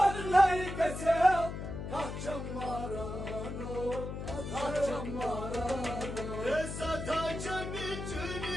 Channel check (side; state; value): left; noise; hum, 6 dB below the sound